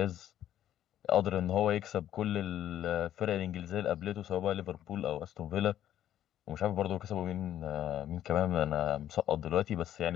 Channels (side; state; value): right; quieter; 11.5 dB